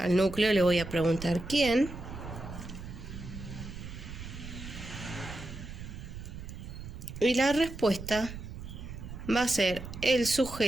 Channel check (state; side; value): noise; right; rumble, 10 dB below the sound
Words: núcleo le voy a preguntar quién. Y la respuesta va a ser el